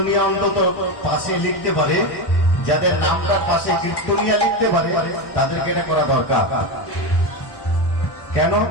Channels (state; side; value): late; right; 1.1 ms